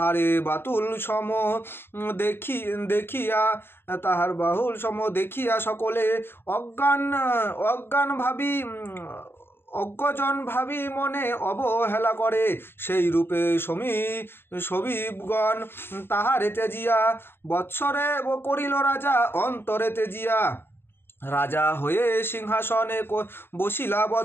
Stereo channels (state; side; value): late; right; 0.11 ms